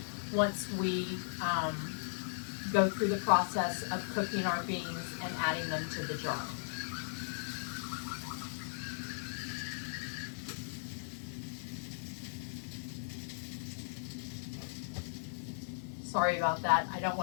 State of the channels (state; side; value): silent; right; digital silence